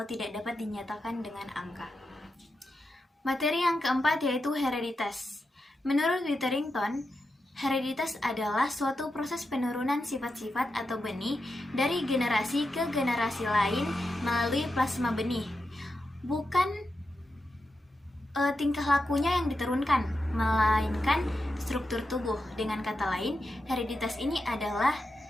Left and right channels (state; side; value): normal; both; correlation 0.88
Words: tidak dapat dinyatakan dengan angka. Materi yang keempat yaitu hereditas. Menurut Witherington, hereditas adalah suatu proses penurunan sifat-sifat atau benih dari generasi ke generasi lain melalui plasma benih. Bukan tingkah lakunya yang diturunkan, melainkan struktur tubuh. Dengan kata lain, hereditas ini adalah